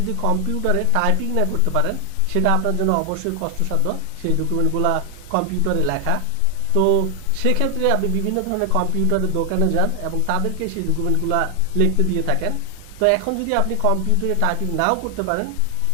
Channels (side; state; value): both; different; correlation 0.00